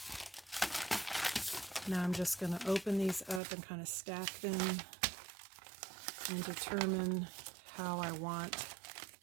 Now I'm just gonna open these up and kind of stack them and determine how I want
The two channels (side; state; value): left; drops out; at 3.4 s